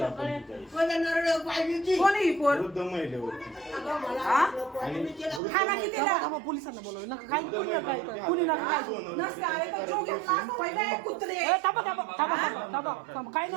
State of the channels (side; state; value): left; drops out; at 5.4 s